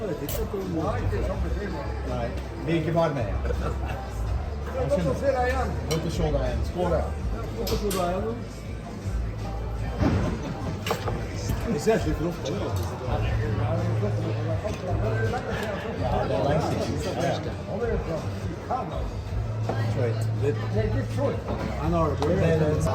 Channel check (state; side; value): identical; both; correlation 1.00